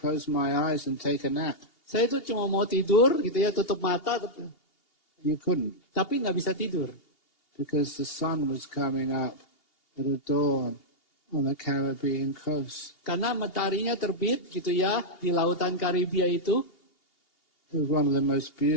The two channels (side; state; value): right; late; 2.8 ms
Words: my eyes and take a nap. Saya itu cuma mau tidur gitu ya, tutup mata. You couldn't. Tapi nggak bisa tidur. Because the sun was coming up at a dawn on the Caribbean coast. Karena mataharinya terbit gitu ya di lautan Karibia itu. It was one of the most